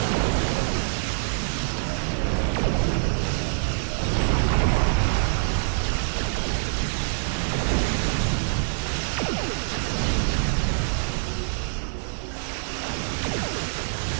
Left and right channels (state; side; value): silent; left; digital silence